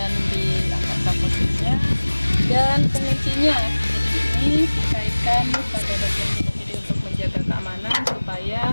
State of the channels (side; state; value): both; inverted; correlation -1.00